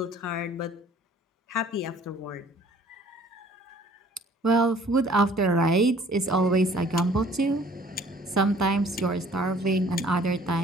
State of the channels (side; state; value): both; normal; correlation 0.55